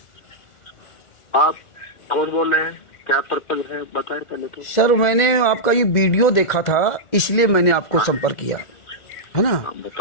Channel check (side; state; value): right; late; 1.4 ms